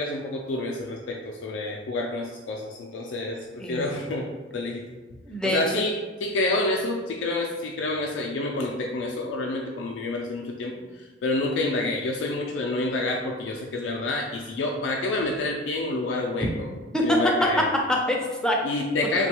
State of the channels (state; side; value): normal; both; correlation 0.30